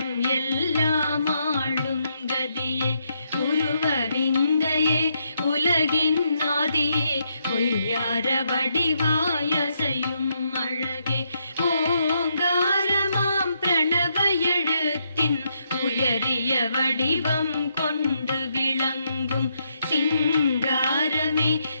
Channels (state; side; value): inverted; both; correlation -0.78